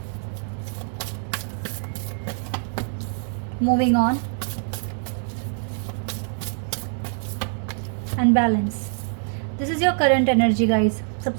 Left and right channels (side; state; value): left; silent; 62 dB below the other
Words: Moving on and balance. This is your current energy guys.